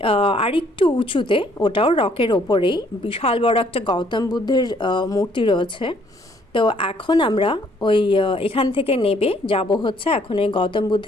আরেকটু উঁচুতে, ওটাও রকের ওপরেই বিশাল বড় একটা গৌতম বুদ্ধের মূর্তি রয়েছে। তো এখন আমরা ওই এখান থেকে নেবে যাব হচ্ছে এখন এই গৌতম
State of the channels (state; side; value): normal; both; correlation 0.64